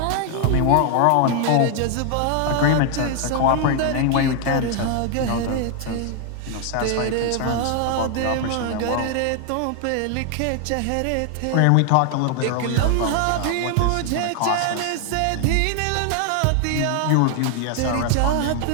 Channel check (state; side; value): different; both; correlation 0.00